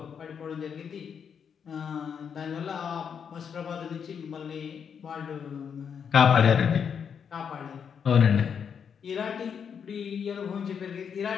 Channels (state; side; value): quieter; right; 7.2 dB